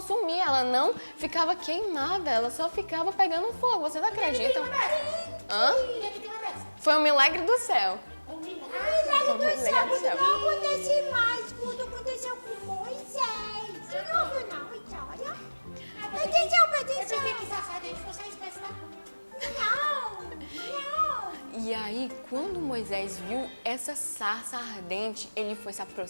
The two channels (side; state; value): both; inverted; correlation -1.00